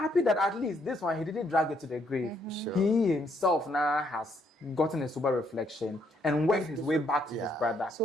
that at least this one he didn't drag it to the grave. Sure. He himself now has gotten a sober reflection and worked his way back to his brother.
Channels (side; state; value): both; normal; correlation 0.72